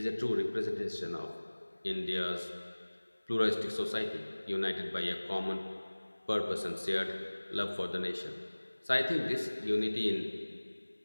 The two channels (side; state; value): both; inverted; correlation -1.00